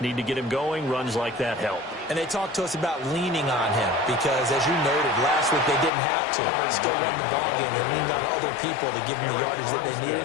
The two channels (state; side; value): drops out; right; at 5.9 s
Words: need to get him going. Runs like that help. And they talked to us about leaning on him because, as you noted, last week they didn't have to. They still won the ball game. They leaned on other people to give them the yardage that they